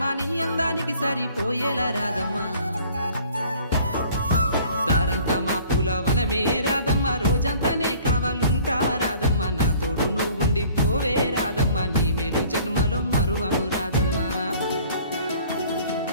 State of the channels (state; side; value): inverted; both; correlation -0.53